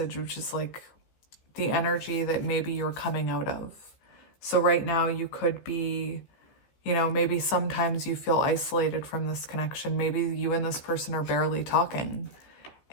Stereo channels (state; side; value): late; right; 15 ms